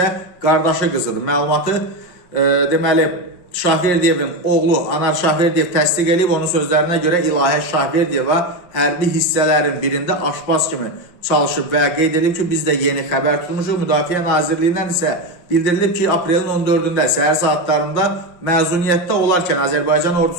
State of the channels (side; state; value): right; late; 5.6 ms